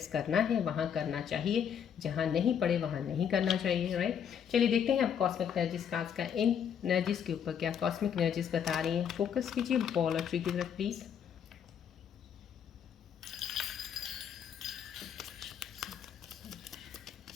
करना है वहाँ करना चाहिए, जहाँ नहीं पड़े वहाँ नहीं करना चाहिए, राइट। चलिए देखते हैं अब कॉस्मिक एनर्जीज का आज का इन एनर्जीज के ऊपर क्या कॉस्मिक एनर्जीज बता रही हैं। फोकस कीजिए बॉल और ट्री की तरफ प्लीज़।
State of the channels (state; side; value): quieter; right; 8.1 dB